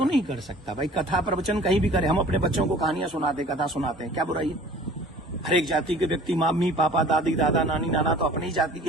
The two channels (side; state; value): both; normal; correlation 0.48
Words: नहीं कर सकता भाई? कथा प्रवचन कहीं भी करे। हम अपने बच्चों को कहानियां सुनाते, कथा सुनाते हैं, क्या बुराई है? हर एक जाति के व्यक्ति, मम्मी पापा, दादी दादा, नानी नाना तो अपनी ही जाति